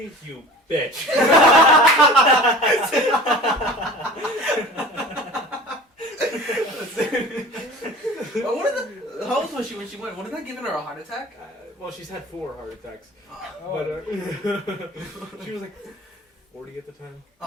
you bitch." How old was she when she went? Wasn't that giving her a heart attack? Well, she's had 4 heart attacks, Oh, but she was like 40 at the time.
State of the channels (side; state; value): both; normal; correlation 0.40